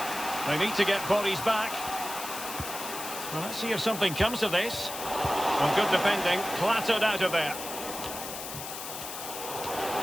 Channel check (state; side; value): noise; left; hiss, 8 dB below the sound